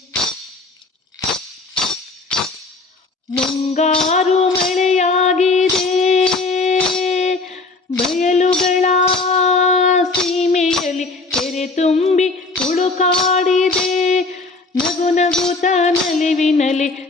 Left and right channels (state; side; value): quieter; right; 3.5 dB